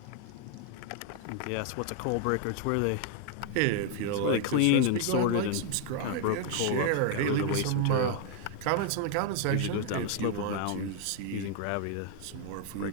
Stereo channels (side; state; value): both; different; correlation 0.00